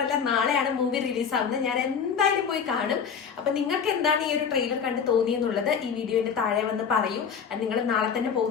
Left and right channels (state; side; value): quieter; right; 6.8 dB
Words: നാളെയാണ് മൂവി റിലീസ് ആവുന്നത്. ഞാൻ എന്തായാലും പോയി കാണും. അപ്പൊ നിങ്ങൾക്ക് എന്താണ് ഈ ഒരു ട്രെയിലർ കണ്ട് തോന്നിയെന്നുള്ളത് ഈ വീഡിയോന്റെ താഴെ വന്ന് പറയൂ. നിങ്ങൾ നാളെ തന്നെ